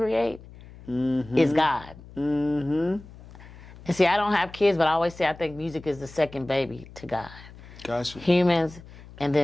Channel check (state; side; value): noise; left; hum, 19 dB below the sound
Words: is God. And see, I don't have kids, but I always say I think music is the second baby to God. Gotcha. Humans, and